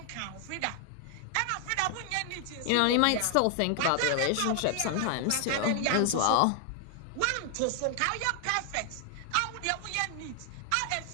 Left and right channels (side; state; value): both; different; correlation 0.00